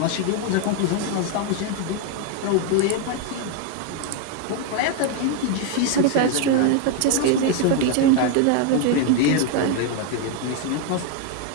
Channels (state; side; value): different; both; correlation 0.01